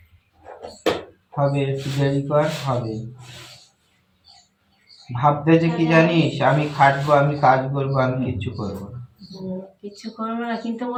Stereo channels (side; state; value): both; identical; correlation 1.00